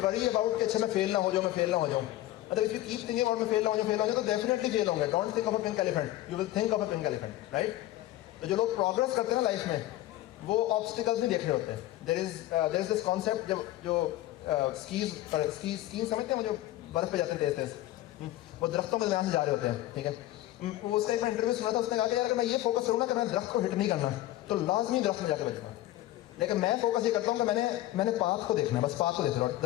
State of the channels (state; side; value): quieter; right; 15.4 dB